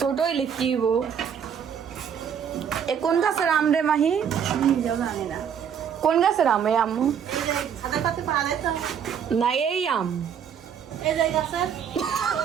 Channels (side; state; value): left; quieter; 8.0 dB